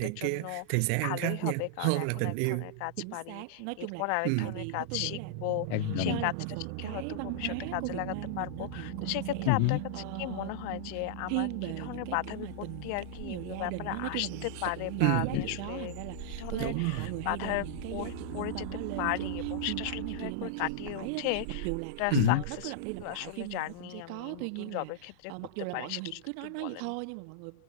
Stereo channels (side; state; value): both; different; correlation -0.01